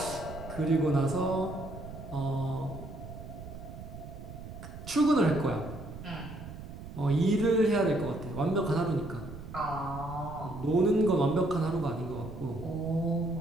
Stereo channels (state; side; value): noise; right; rumble, 12 dB below the sound